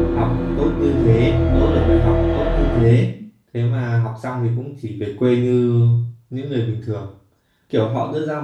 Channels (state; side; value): identical; both; correlation 1.00